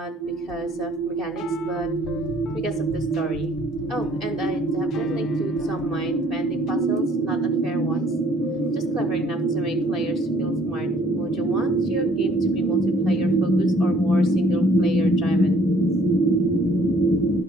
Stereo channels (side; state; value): both; normal; correlation 0.60